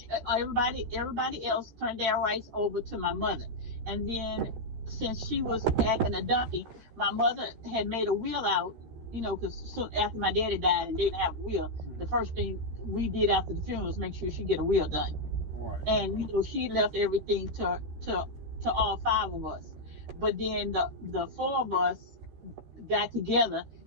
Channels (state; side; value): late; left; 13 ms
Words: Everybody else turned their rights over to my mother, and then since she was acting a donkey, my mother had made a will out. Because soon after my daddy died and didn't have a will, the first thing we did after the funeral was make sure she get a will done. Right. And she left everything to all 5 of us. But then the 4 of us got together